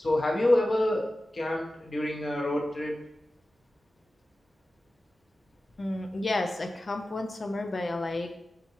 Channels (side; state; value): both; normal; correlation 0.95